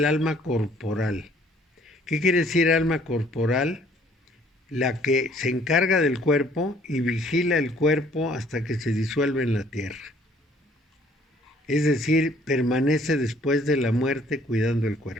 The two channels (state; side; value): normal; both; correlation 0.60